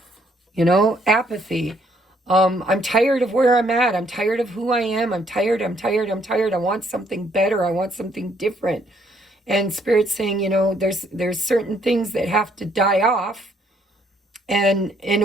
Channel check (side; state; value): both; normal; correlation 0.68